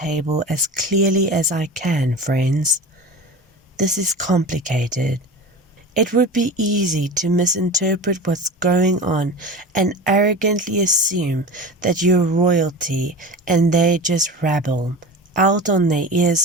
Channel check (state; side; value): normal; both; correlation 0.32